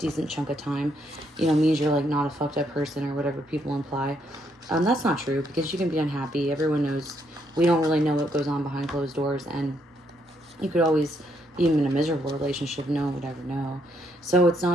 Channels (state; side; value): normal; both; correlation 0.74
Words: chunk of time, means you're, like, not a fucked up person or whatever people imply. That's not true, because you can be unhappy. Everyone knows. We don't really know what goes on behind closed doors, and you could always, even in a miserable relationship, no one would ever know. So it's